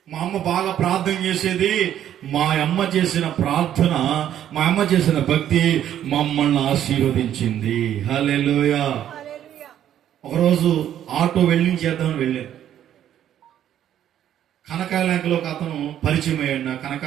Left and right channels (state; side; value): quieter; left; 10.8 dB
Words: మా అమ్మ బాగా ప్రార్థన చేసేది. మా అమ్మ చేసిన ప్రార్థన, మా అమ్మ చేసిన భక్తి మమ్మల్ని ఆశీర్వదించింది. హల్లెలూయా. ఒకరోజు ఆటో చేద్దామని వెళ్ళాను. కనకాలంకలో ఒక అతను పరిచయం అయ్యాడు.